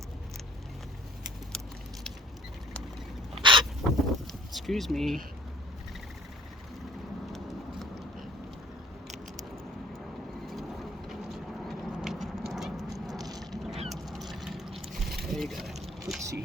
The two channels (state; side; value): normal; both; correlation 0.54